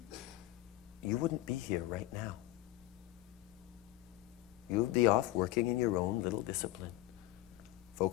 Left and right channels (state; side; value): quieter; right; 16.2 dB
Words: you wouldn't be here right now. You would be off working in your own little discipline,